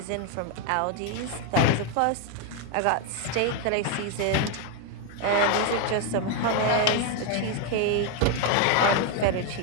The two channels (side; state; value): both; different; correlation 0.01